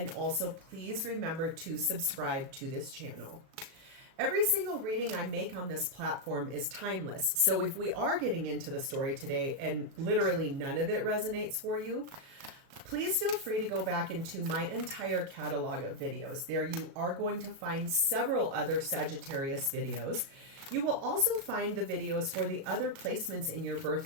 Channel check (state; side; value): late; left; 37 ms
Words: also please remember to subscribe to this channel. Every single reading I make on this platform is timeless. So if we are getting into the story today and literally none of it resonates for you, please feel free to go back into my entire catalog of videos. There you are going to find several other Sagittarius videos. You will also find the videos for the other placements in your